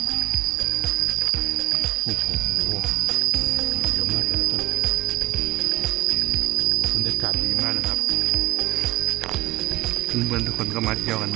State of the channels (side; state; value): left; quieter; 18.2 dB